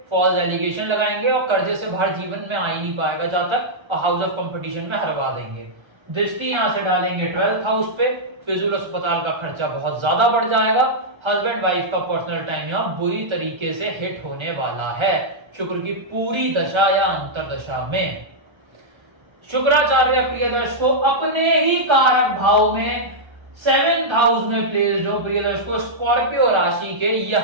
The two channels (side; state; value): left; late; 1.3 ms